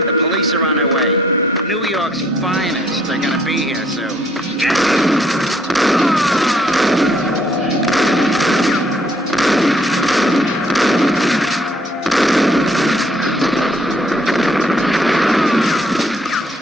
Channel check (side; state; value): both; normal; correlation 0.65